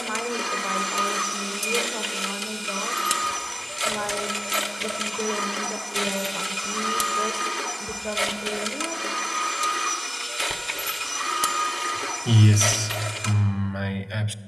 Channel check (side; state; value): both; identical; correlation 1.00